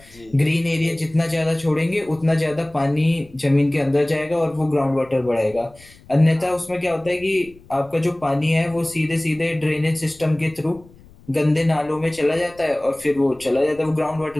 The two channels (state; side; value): noise; left; rumble, 25 dB below the sound